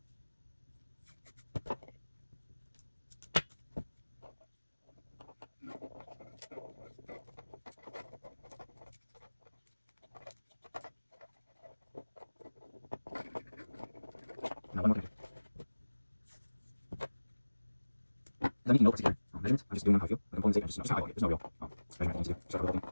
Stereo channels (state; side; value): inverted; both; correlation -1.00